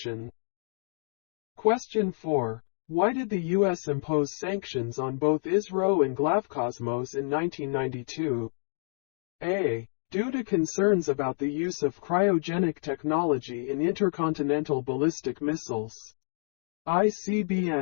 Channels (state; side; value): silent; right; digital silence